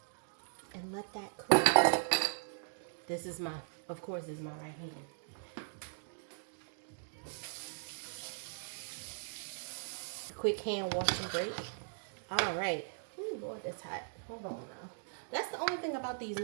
and let that cook. This is my, of course, this is my right hand. Quick hand wash and break. All right. Ooh, Lord, that's hot. Hold on now. That's the only thing about these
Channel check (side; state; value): left; silent; digital silence